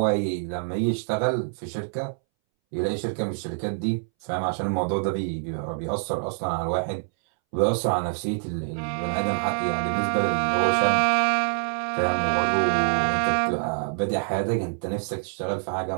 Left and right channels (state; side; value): silent; left; 61 dB below the other